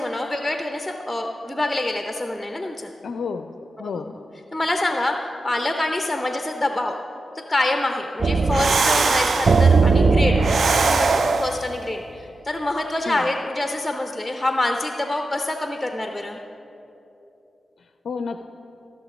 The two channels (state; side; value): normal; both; correlation 0.89